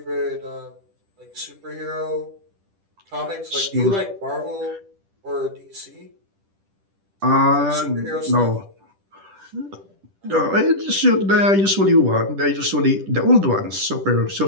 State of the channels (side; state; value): left; late; 10 ms